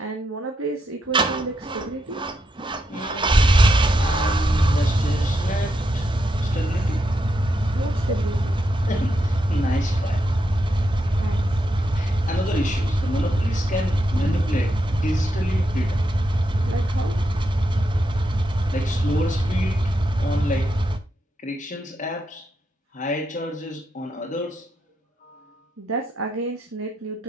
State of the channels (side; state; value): both; normal; correlation 0.82